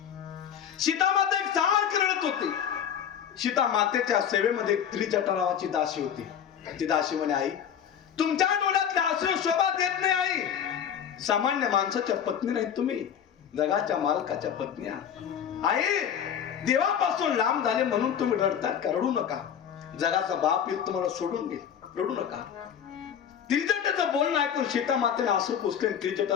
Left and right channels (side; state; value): right; quieter; 8.7 dB